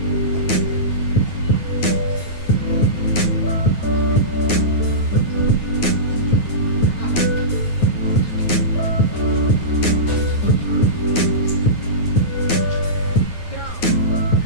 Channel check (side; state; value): right; late; 9.5 ms